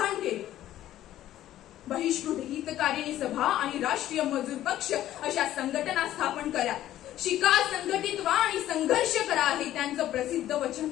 केले। बहिष्कृत हितकारिणी सभा आणि राष्ट्रीय मजूर पक्ष अशा संघटना स्थापन करा, शिका, संघटित व्हा आणि संघर्ष करा, हे त्यांचं प्रसिद्ध वचन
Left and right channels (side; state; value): right; quieter; 13.1 dB